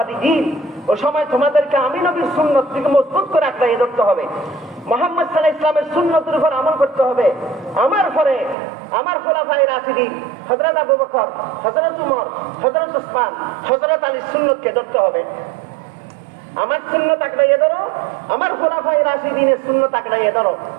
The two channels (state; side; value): drops out; left; at 8.6 s